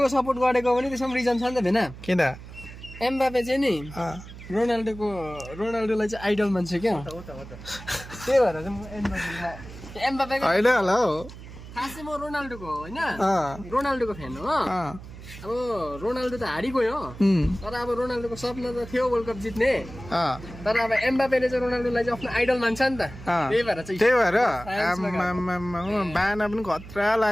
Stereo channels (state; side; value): noise; right; hum, 15 dB below the sound